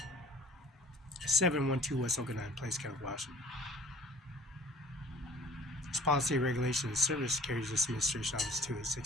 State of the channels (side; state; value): both; normal; correlation 0.50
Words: 712 West Oak 9 Place, County, Washington. Its policy, regulation, and service carries this administration office to its